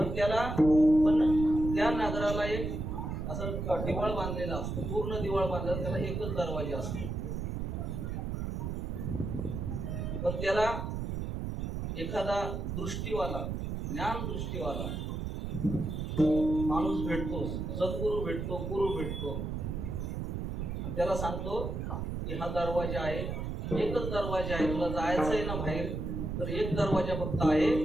त्या नगराला एक असं दिवाळ बांधलेला असतो, पूर्ण दिवाळ बांधलेला. त्याला एकच दरवाजा असतो. पण त्याला एखादा दृष्टीवाला, ज्ञान दृष्टीवाला माणूस भेटतो, सद्गुरू भेटतो, गुरु भेटतो. त्याला सांगतो की हा दरवाजा आहे, एकच दरवाजा आहे, तुला जायचं आहे ना बाहेर तर एक दरवाजा फक्त आहे.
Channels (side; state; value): right; noise; rumble, 3 dB below the sound